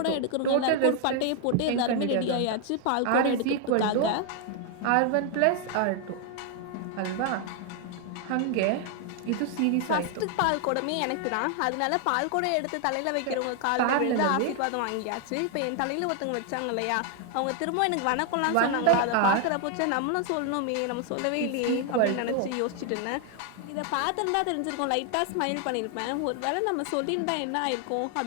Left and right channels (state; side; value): different; both; correlation 0.00